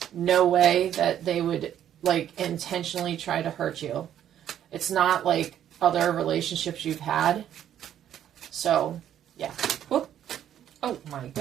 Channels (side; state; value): left; quieter; 10.5 dB